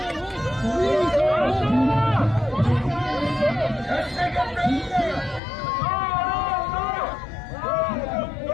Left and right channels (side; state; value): right; drops out; at 5.4 s